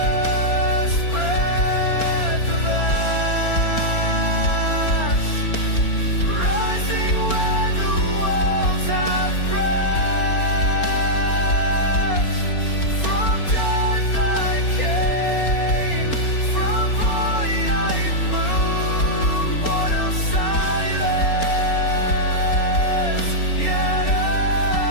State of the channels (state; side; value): late; right; 4.4 ms